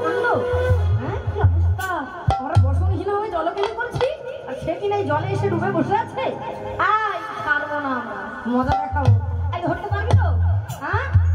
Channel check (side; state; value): both; identical; correlation 1.00